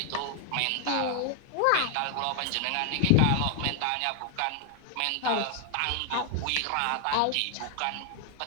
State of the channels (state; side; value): different; both; correlation 0.00